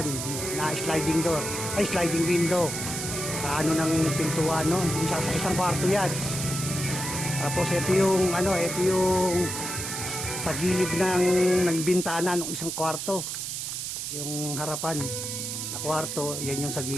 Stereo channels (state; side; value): noise; right; hiss, 4 dB below the sound